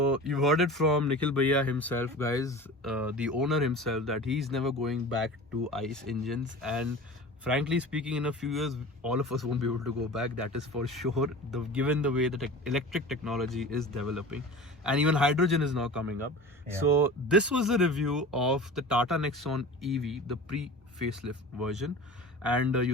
you heard it from Nikhil Bhaiya himself, guys, the owner himself, that he's never going back to ICE engines. And frankly speaking, in a few years, all of us won't be able to go back. That is for sure. Given the way that electric technology is developing, and even hydrogen is now coming up. Yeah. So this was a review of the Tata Nexon EV, the pre-facelift version. And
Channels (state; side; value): normal; both; correlation 0.36